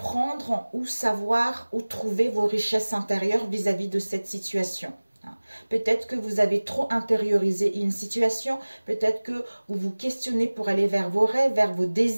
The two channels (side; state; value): both; inverted; correlation -1.00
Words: ou savoir ou trouver vos richesses intérieures vis-à-vis de cette situation. Peut-être que vous avez trop intériorisé une situation, peut-être que vous vous questionnez pour aller vers vos rêves, vers vos